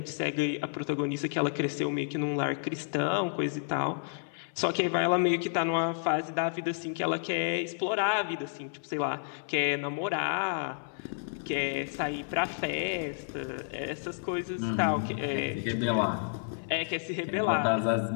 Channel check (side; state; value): right; silent; 57 dB below the other